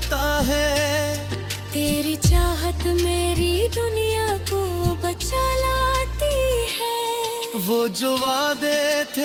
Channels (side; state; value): both; identical; correlation 1.00